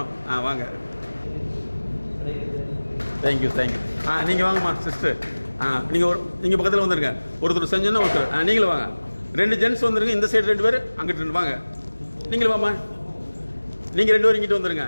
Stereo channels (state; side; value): inverted; both; correlation -1.00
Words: வாங்க. தேங்க்யூ. நீங்கள் வாங்கம்மா சிஸ்டர். நீங்கள் பக்கத்தில் வந்துருங்க. ஒருத்தர் செஞ்சோன்னா ஒருத்தர் நீங்களும் வாங்க. 2 ஜென்ட்ஸ் வந்துருங்க. இந்த சைடு 2 பேர், அங்கிட்டு 2 வாங்க. நீங்களும் வாம்மா. நீங்கள் 2 பேரும் இங்கிட்டு வந்துருங்க.